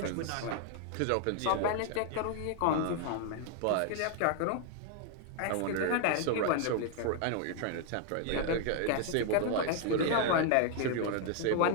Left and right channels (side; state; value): both; different; correlation 0.00